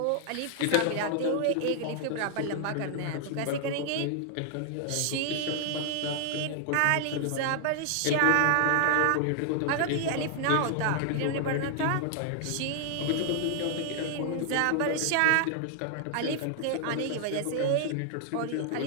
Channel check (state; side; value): different; both; correlation 0.00